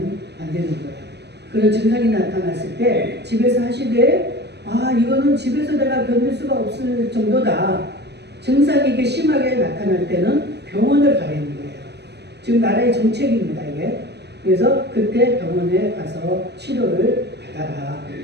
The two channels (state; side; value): late; left; 0.49 ms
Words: 안 되는 거예요. 그런 증상이 나타났을 때 집에서 하시되 이거는 집에서 내가 견딜 수가 없을 정도다. 증상이 이렇게 심하게 나타날 때는 병원을 가야 하는 거예요. 지금 나라의 정책입니다, 이게. 그래서 그때 병원에 가서 치료를 받아라.